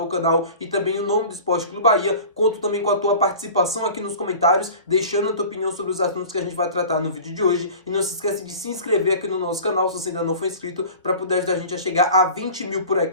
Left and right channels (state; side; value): inverted; both; correlation -0.40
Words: o canal e também o nome do Esporte Clube Bahia. Conto também com a tua participação aqui nos comentários, deixando a tua opinião sobre os assuntos que a gente vai tratar no vídeo de hoje. E não se esquece de se inscrever aqui no nosso canal, se você ainda não for inscrito, para poder ajudar a gente a chegar a 20 mil por